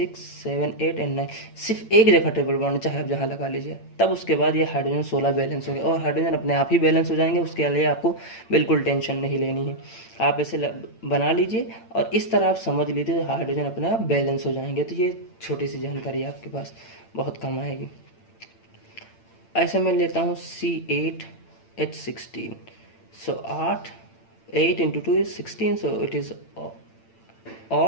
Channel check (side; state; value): right; late; 8.9 ms